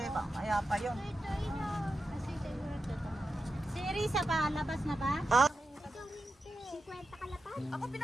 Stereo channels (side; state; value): both; normal; correlation 0.90